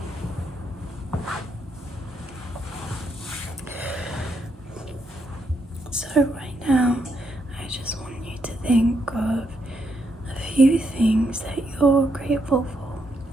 So right now, I just want you to think of a few things that you're grateful for.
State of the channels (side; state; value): both; normal; correlation 0.78